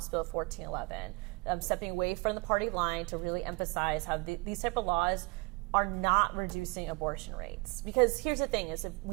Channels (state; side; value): quieter; left; 27.8 dB